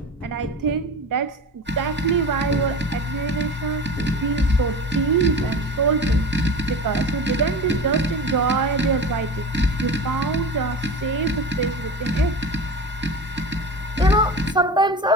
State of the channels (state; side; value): normal; both; correlation 0.31